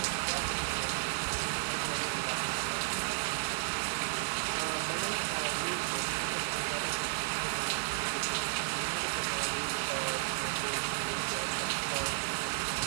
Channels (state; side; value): silent; left; digital silence